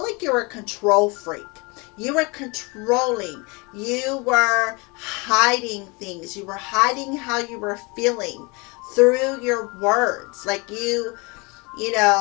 like you were a control freak. You were controlling. You were hiding things. You were hiding how you were feeling through your words. Like you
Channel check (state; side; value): quieter; right; 28.0 dB